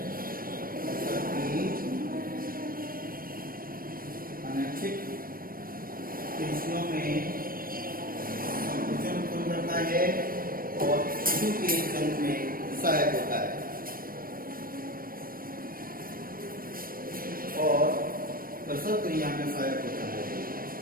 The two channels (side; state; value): left; late; 0.41 ms